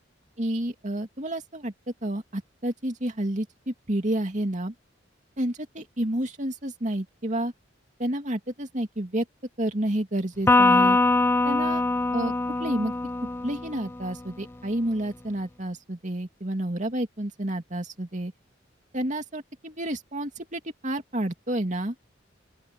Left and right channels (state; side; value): normal; both; correlation 0.72